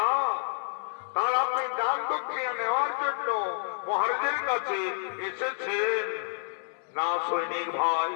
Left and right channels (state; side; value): silent; right; 59 dB below the other